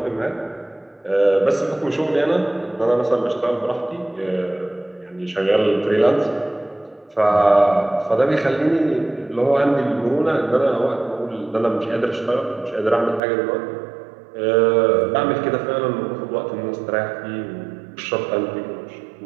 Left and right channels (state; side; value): drops out; left; at 13.2 s